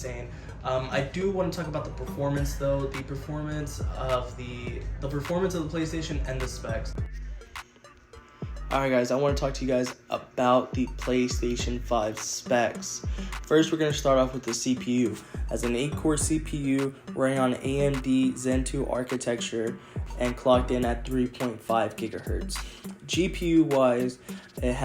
I do want to talk about the performance though. The performance of the PlayStation and the specs. Alright guys, I want to talk to you guys about the PlayStation 5 specs. First, we're going to start off with the CPU. As an 8-core CPU running on AMD Zen 2 architecture and clocked in at 3.5 gigahertz. GPU wise, it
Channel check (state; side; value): identical; both; correlation 1.00